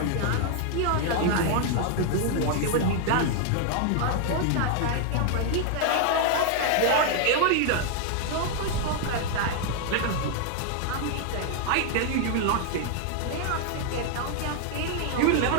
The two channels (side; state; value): both; different; correlation 0.00